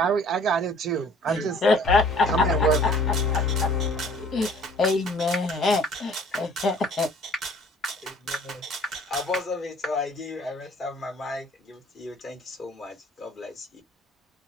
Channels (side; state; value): both; normal; correlation 0.53